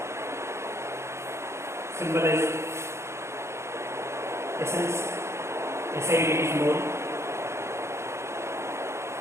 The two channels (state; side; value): late; left; 0.13 ms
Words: symbol is essence, SI unit is mole,